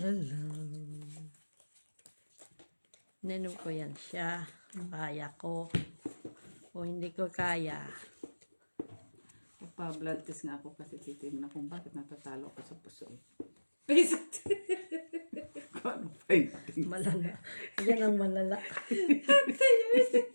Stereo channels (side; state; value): both; inverted; correlation -1.00